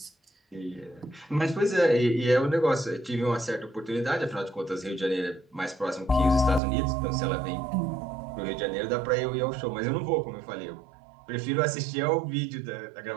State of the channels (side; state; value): left; drops out; at 6.6 s